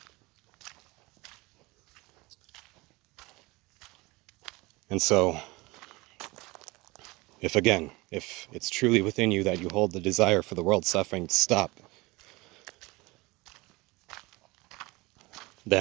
And so, if it's truly within you that you hold the desire for the world's suffering to stop,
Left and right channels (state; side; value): quieter; left; 23.0 dB